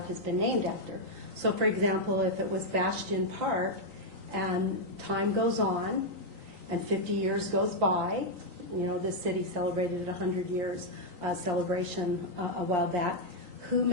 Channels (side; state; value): left; late; 3.9 ms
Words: has been named after. So for example, if it was Bastion Park and time goes on and 50 years goes by, this city celebrated 100 years celebration a while back, who